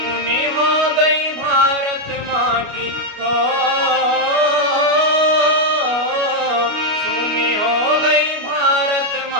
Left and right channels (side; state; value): left; late; 29 ms